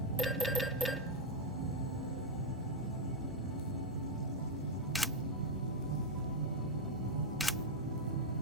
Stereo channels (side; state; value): both; normal; correlation 0.01